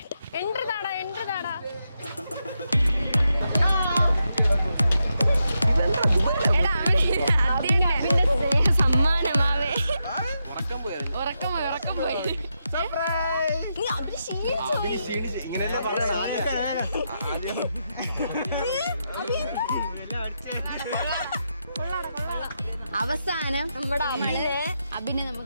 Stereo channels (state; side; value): inverted; both; correlation -0.85